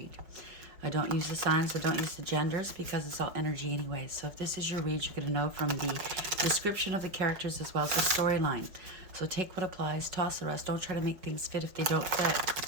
I don't use the signs, I don't use the genders because it's all energy anyway. So if this is your read, you're going to know from the description of the characters as well as the storyline. So take what applies, toss the rest. Don't try to make things fit if they don't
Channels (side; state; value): left; late; 5.2 ms